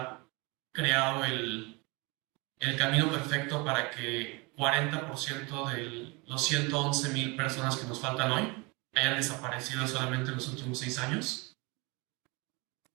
creado el camino perfecto para que 40% de los 111,000 personas que nos faltan hoy hayan desaparecido solamente en los últimos 6 años.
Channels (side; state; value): left; quieter; 27.5 dB